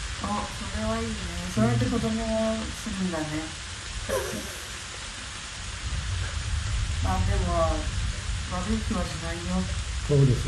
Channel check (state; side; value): identical; both; correlation 1.00